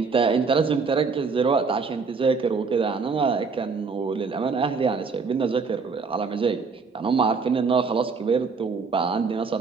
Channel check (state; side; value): quieter; left; 4.9 dB